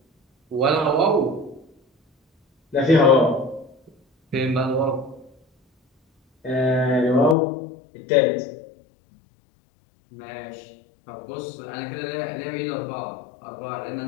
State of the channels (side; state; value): right; drops out; at 7.4 s